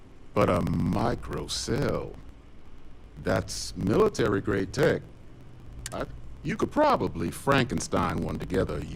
But a microcell, that's military-grade tech. You could probably Frankenstein one together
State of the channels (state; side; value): identical; both; correlation 1.00